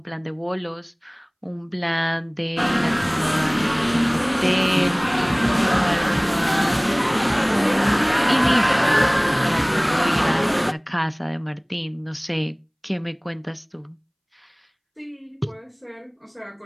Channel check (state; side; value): identical; both; correlation 1.00